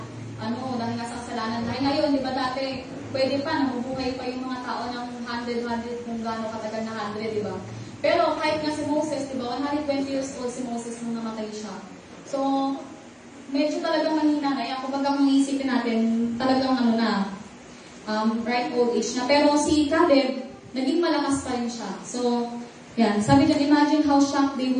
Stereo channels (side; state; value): both; identical; correlation 1.00